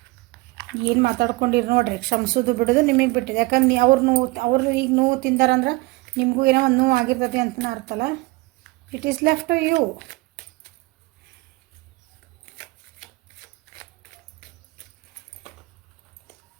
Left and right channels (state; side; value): quieter; left; 22.8 dB